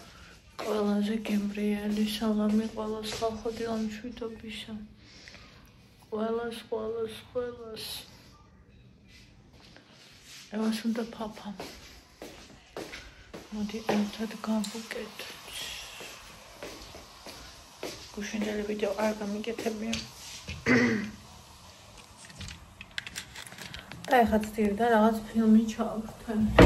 ყველაზე გემრიელი სალამი ყველას ხალხო დილამშვიდობისა. ყველას. ევას უნდა ფაფა. მოდი ერთად გავუკეთოთ. გუშინდელი ვიდეო არ გამიგეთებია. და ეხლა ცდილდა რაღაც ფილმი ჩავხტე.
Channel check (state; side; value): identical; both; correlation 1.00